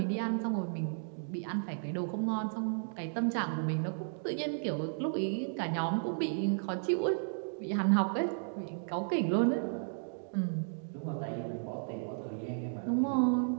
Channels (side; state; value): left; silent; digital silence